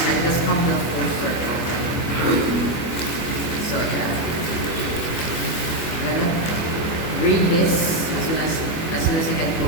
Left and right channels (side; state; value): right; late; 25 ms